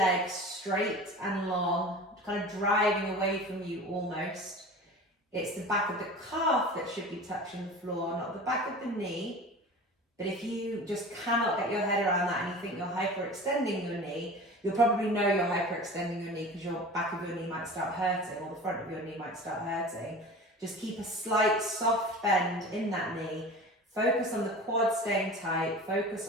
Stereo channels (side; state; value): both; normal; correlation 0.37